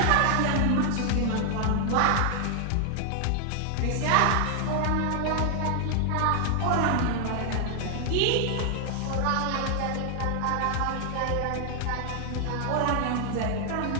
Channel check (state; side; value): different; both; correlation 0.00